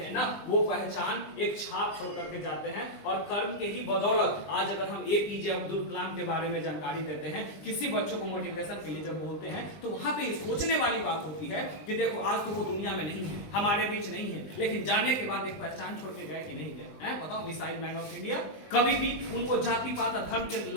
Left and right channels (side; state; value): right; late; 20 ms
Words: ना, वो पहचान एक छाप छोड़ करके जाते हैं, और कर्म के ही बदौलत आज अगर हम एपीजे अब्दुल कलाम के बारे में जानकारी देते हैं, किसी बच्चों को मोटिवेशन के लिए जब बोलते हैं, तो वहां पे सोचने वाली बात होती है कि देखो आज तो वो दुनिया में नहीं है, हमारे बीच नहीं है, लेकिन जाने के बाद एक पहचान छोड़ के गए कि नहीं गए, बताओ। मिसाइल मैन ऑफ इंडिया, कभी भी उनको जाति पात धर्म के